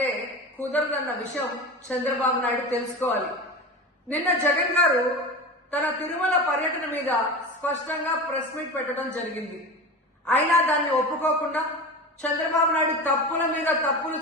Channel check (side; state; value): both; normal; correlation 0.28